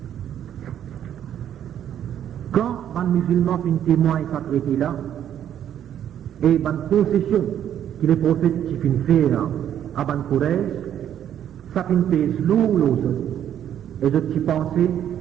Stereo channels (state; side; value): quieter; left; 10.1 dB